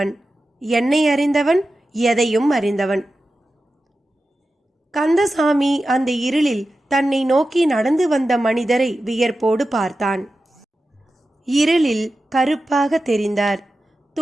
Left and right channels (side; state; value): both; normal; correlation 0.93